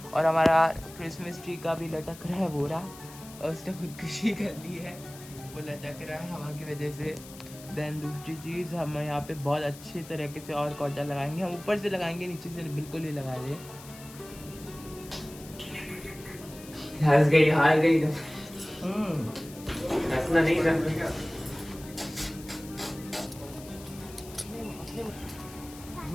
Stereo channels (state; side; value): noise; left; hiss, 18 dB below the sound